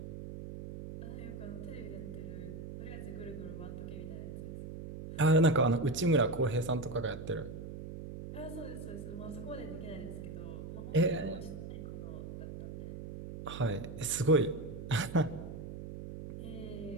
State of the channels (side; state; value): right; noise; hum, 9 dB below the sound